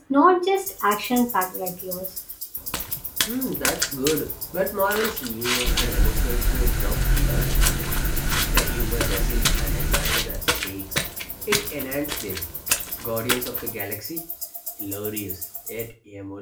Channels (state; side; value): identical; both; correlation 1.00